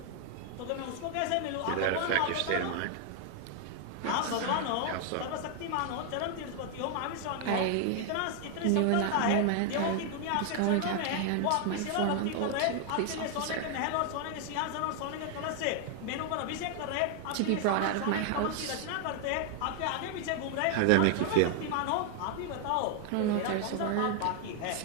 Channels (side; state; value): both; different; correlation 0.00